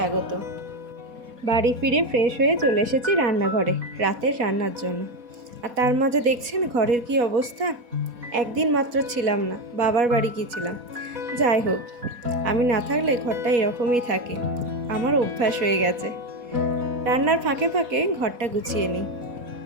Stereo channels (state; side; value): late; left; 4.2 ms